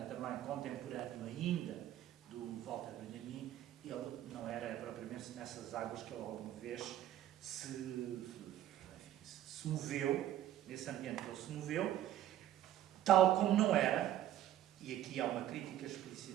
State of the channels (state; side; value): quieter; left; 12.4 dB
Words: também contemporâneo ainda do Walter Benjamin, ele não era propriamente nessas águas que ele alguma vez se moveu, nesse ambiente que ele se moveu, tal como não era, e aqui há uma crítica